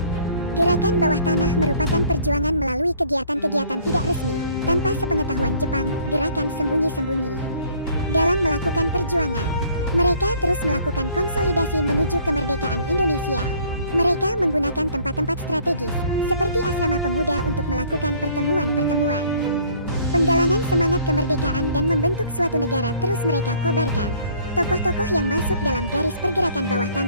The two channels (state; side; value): inverted; both; correlation -0.56